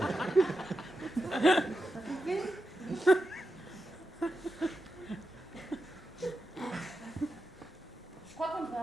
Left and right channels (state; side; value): normal; both; correlation 0.89